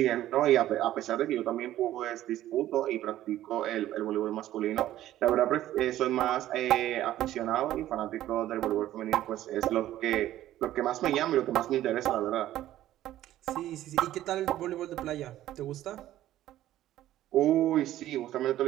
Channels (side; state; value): left; quieter; 13.5 dB